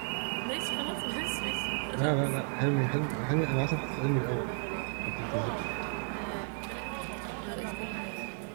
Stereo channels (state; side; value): silent; left; 56 dB below the other